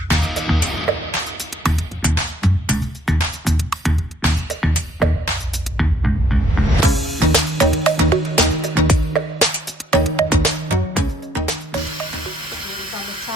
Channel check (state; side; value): normal; both; correlation 0.65